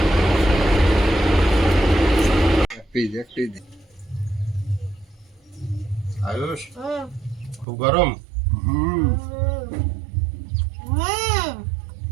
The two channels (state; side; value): drops out; left; at 7.7 s